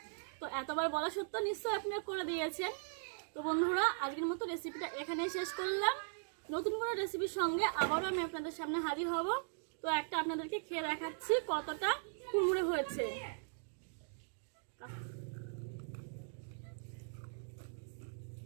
তো এতবার বলা সত্ত্বেও নিশ্চয়ই আপনারা করে দিয়েছেন। তো বন্ধুরা আজকের মতো রেসিপিটা এখানেই শেষ করলাম। নতুন কোনো রেসিপির সঙ্গে আবারও আমি আপনাদের সামনে হাজির হব। তো একটা আপনাদেরকে খেয়ে দেখাচ্ছি কতটা কুড়মুড়ে হয়েছে।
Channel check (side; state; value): left; silent; digital silence